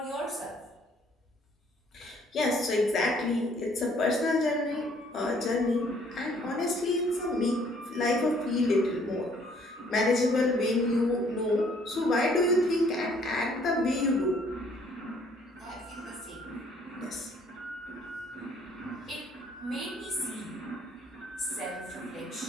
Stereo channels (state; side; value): normal; both; correlation 0.62